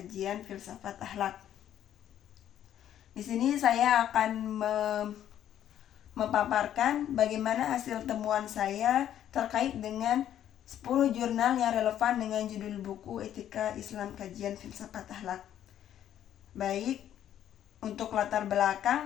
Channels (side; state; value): right; quieter; 10.9 dB